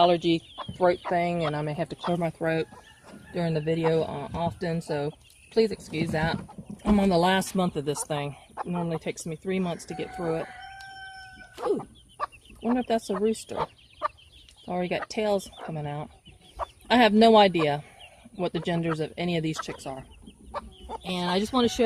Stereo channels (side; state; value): both; identical; correlation 1.00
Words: throat thing, and I may have to clear my throat during the video often, so please excuse that. I'm on the last month of this thing. It normally takes me 3 months to get through it. Ooh, wonder if that's a rooster. It's already got tails coming out. I have no idea what the genders of any of these chicks are. And I just want to